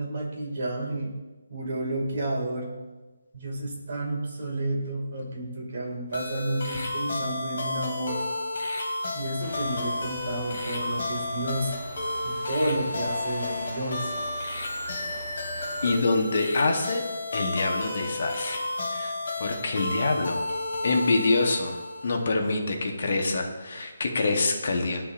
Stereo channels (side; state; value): both; inverted; correlation -0.83